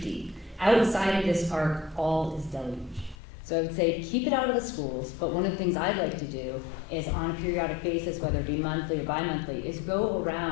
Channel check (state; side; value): drops out; right; at 3.2 s